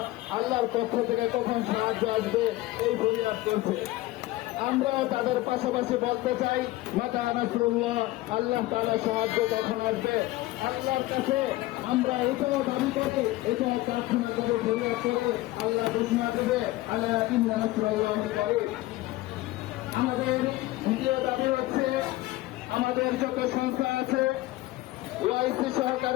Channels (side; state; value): right; quieter; 18.0 dB